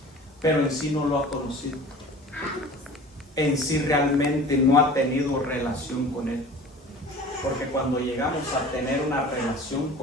pero en sí no lo ha conocido. En sí realmente no ha tenido relación con Él. Porque cuando llegamos a tener una relación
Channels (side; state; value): both; normal; correlation 0.41